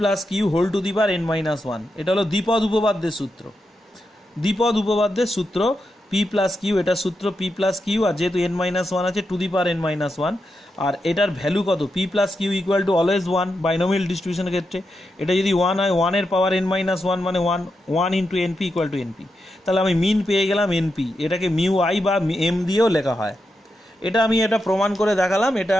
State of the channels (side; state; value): both; normal; correlation 0.86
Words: Q whole to the power n-1। এটা হলো দ্বিপদ উপপাদ্যের সূত্র, দ্বিপদ উপপাদ্যের সূত্র পি প্লাস কিউ, এটা সূত্র পি প্লাস কিউ, আর যেহেতু n-1 আছে টু দি পাওয়ার n-1, আর এটার ভ্যালু কত, P plus Q equal to always 1 binomial ডিস্ট্রিবিউশনের ক্ষেত্রে। এটা যদি 1 হয় 1 এর পাওয়ার n-1 মানে 1 into NP equal to NP. তাহলে আমি মিন পেয়ে গেলাম এনপি, এটাকে মিউ আই বা এম দিয়েও লেখা হয়। এটা আমি এটা প্রমাণ করে দেখালাম, এটা